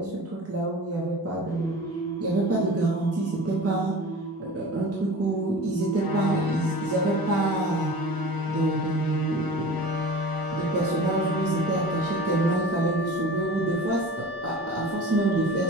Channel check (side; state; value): both; normal; correlation 0.38